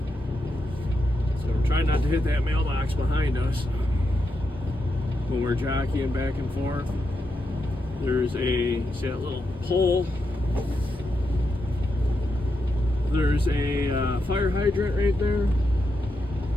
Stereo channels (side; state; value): both; normal; correlation 0.85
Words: So we're trying not to hit that mailbox behind us when we're jockeying back and forth. There's see that little pole? There's a fire hydrant right there.